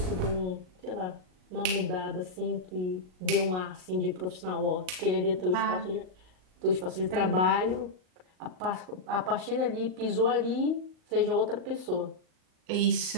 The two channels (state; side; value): late; left; 38 ms